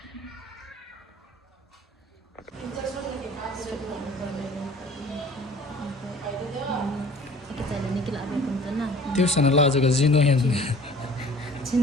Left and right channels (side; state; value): both; normal; correlation 0.48